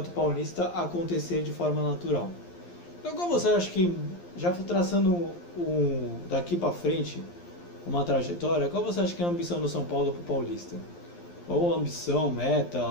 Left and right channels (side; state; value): right; late; 11 ms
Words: Paulista acontecer de forma natural. Então, como você acha que, já traçando daqui para frente uma trajetória, qual você acha que é a ambição do São Paulo para o Paulista? Ou ambição, meta,